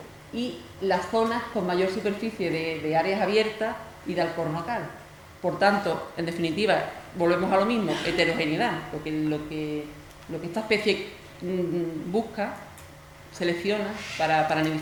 y las zonas con mayor superficie de áreas abiertas y de alcornocal. Por tanto, en definitiva, volvemos a lo mismo, heterogeneidad, lo que esta especie busca, selecciona para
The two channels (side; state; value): both; identical; correlation 1.00